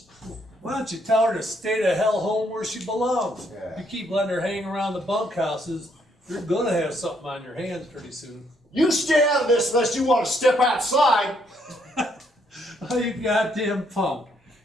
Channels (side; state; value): both; normal; correlation 0.71